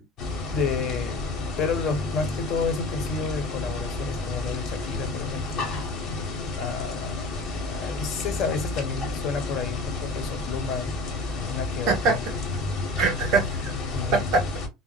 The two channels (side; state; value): both; normal; correlation 0.38